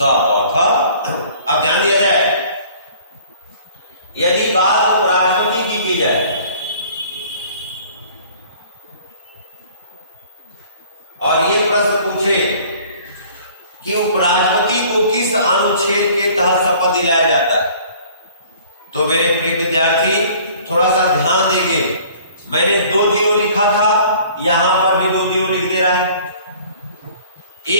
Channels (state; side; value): inverted; both; correlation -0.52